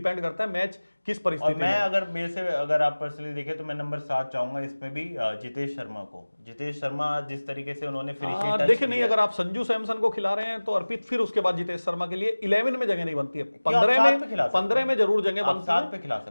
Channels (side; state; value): both; inverted; correlation -1.00